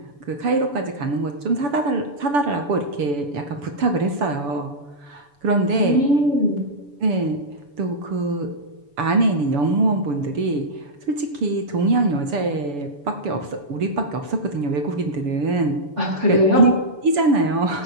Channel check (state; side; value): late; left; 7.0 ms